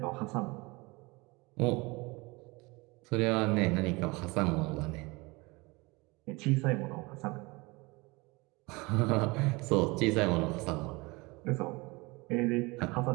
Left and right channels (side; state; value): left; quieter; 24.8 dB